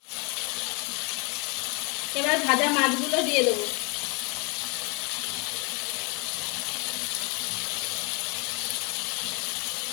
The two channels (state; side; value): quieter; right; 30.7 dB